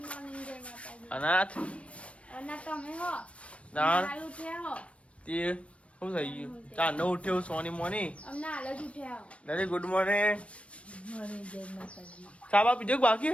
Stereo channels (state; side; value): late; right; 0.062 ms